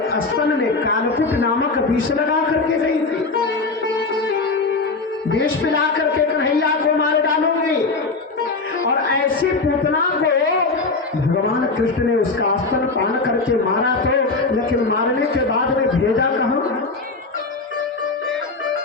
स्तन में कालकुट नामक विष लगा करके गई थी, विष पिला करके कन्हैया को मार डालूंगी, और ऐसी पूतना को भगवान कृष्ण ने उसका स्तन पान करके मारा तो, लेकिन मारने के बाद में भेजा कहां?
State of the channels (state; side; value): quieter; right; 3.8 dB